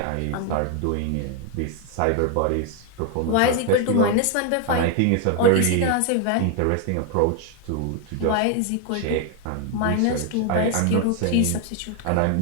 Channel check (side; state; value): both; different; correlation 0.00